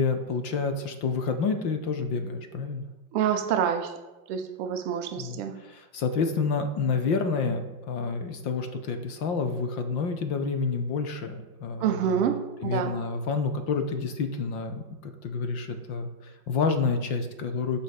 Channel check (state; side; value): late; right; 5.8 ms